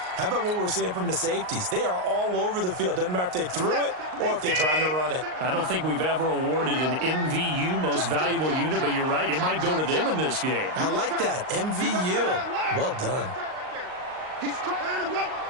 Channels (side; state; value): left; late; 38 ms